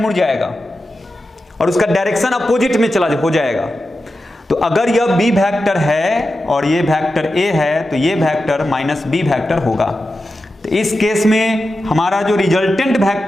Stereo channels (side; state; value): both; normal; correlation 0.91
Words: जाएगा और उसका डायरेक्शन अपोजिट में हो जाएगा। तो अगर यह बी वेक्टर है और ये वेक्टर ए है, तो ये वेक्टर माइनस बी वेक्टर होगा। तो इस केस में हमारा जो रिजल्टेंट